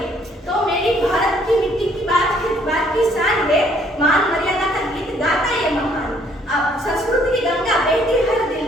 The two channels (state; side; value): normal; both; correlation 0.64